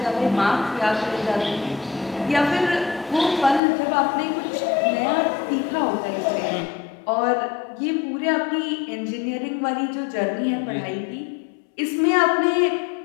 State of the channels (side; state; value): right; drops out; at 3.6 s